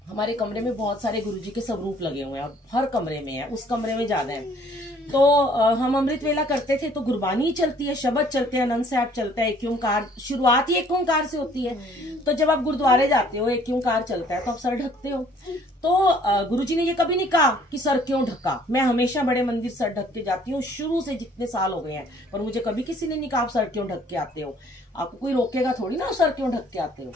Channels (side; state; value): both; normal; correlation 0.58